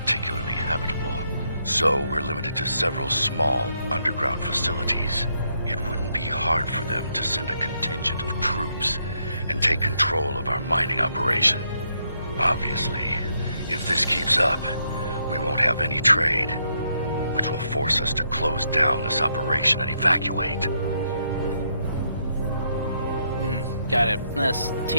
habitable, so we're limited to several small underground facilities. It wouldn't be hard for them to send a contingent of troops and take control of our mining operation. Obviously, if this keeps up, we won't have any trade, which will force us to close down this operation and evacuate. Got it. Let's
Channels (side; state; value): both; inverted; correlation -0.76